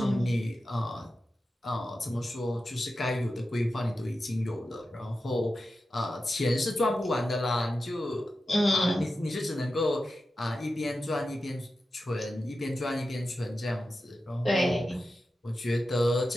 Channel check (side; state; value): both; normal; correlation 0.92